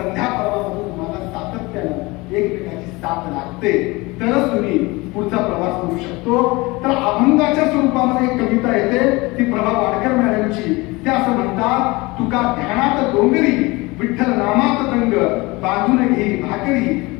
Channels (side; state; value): right; quieter; 23.3 dB